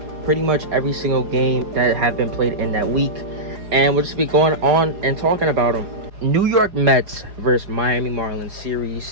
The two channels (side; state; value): left; late; 4.8 ms